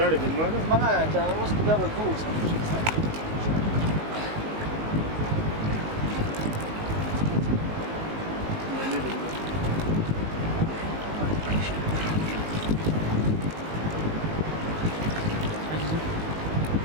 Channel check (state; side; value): late; left; 19 ms